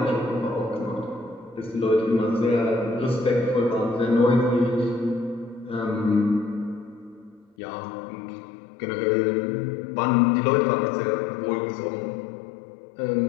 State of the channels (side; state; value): right; drops out; at 7.5 s